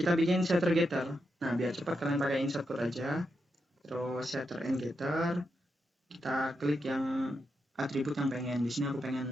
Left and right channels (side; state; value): both; normal; correlation 0.85